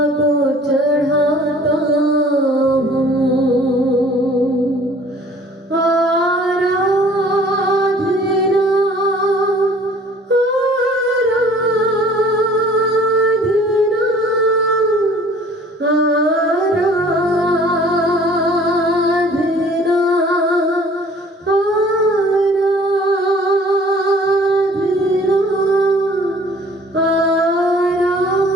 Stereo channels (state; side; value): normal; both; correlation 0.52